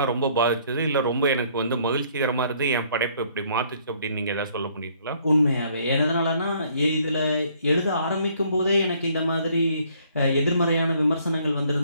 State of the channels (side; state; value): both; inverted; correlation -0.63